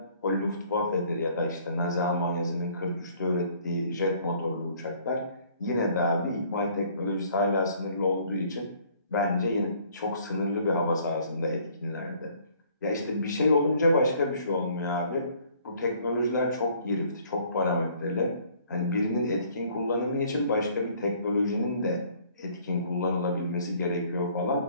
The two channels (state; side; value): inverted; both; correlation -0.59